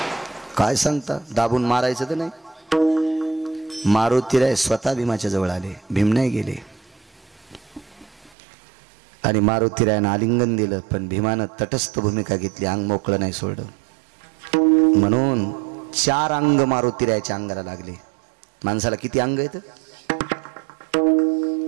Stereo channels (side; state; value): left; drops out; at 8.3 s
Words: काय सांगता, दाबून मारायचं तर नाही. मारुतीराय स्वतः भीमाच्या जवळ आले, भीम नाही गेले. आणि मारुतीरायानं आलिंगन दिलं. पण भीमानं तटस्थ भूमिका घेतली, अंग मोकळं नाही सोडलं. म्हणून 4 अंग मारुतीरायाच्या अंगाला लागले. माणसाला किती अंग आहेत?